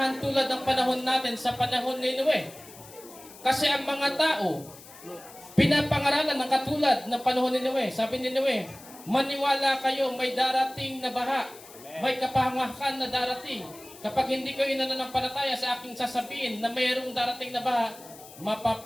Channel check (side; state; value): left; noise; hiss, 19 dB below the sound